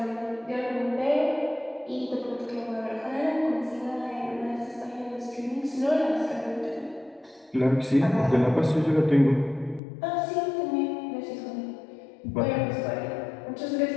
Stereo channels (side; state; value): right; drops out; at 9.8 s